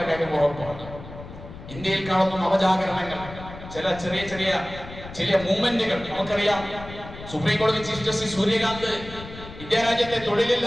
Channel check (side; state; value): left; noise; rumble, 14 dB below the sound